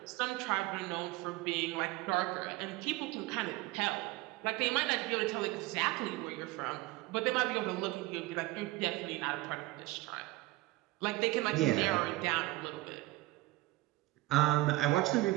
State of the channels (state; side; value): quieter; left; 19.5 dB